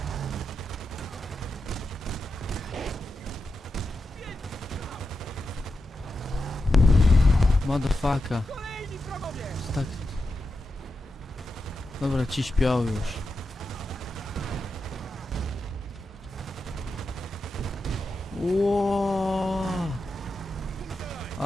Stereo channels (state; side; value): normal; both; correlation 0.88